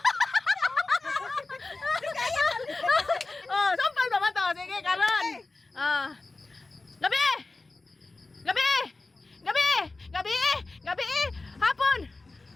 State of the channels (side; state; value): right; quieter; 3.4 dB